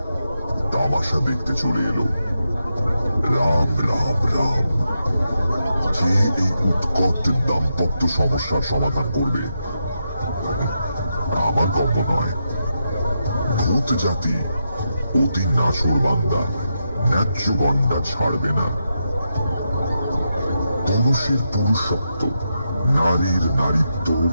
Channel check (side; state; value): both; inverted; correlation -0.85